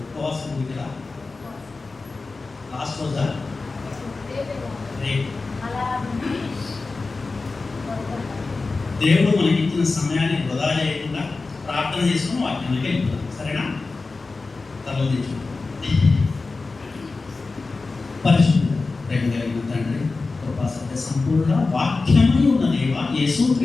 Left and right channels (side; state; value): right; quieter; 3.8 dB